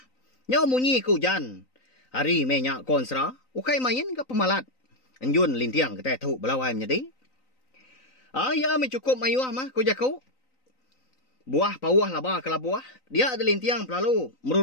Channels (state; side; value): late; right; 3.9 ms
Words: Nyau munyi ke hujan. Hari menyak konsera. Ukai main ke pemalat. Enjun lintiang kita tu belawai menjadi. Ya mencukup mayuah mah ku jaku. Buah pawah laba ke labuah. Dia ada lintiang berlalu